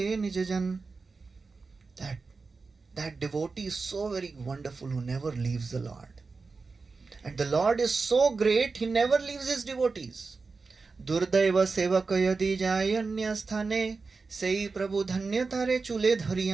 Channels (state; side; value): quieter; left; 4.3 dB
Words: nijajan. That devotee is so very wonderful who never leaves the Lord. And the Lord is so great, he never leaves his devotees. Durdaiva sevaka yadi jayanya sthane, sei prabhu dhanya tare chule